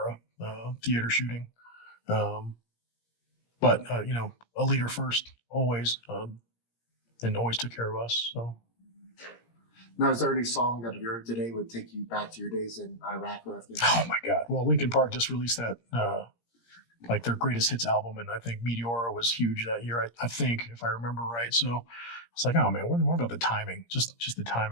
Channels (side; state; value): right; late; 17 ms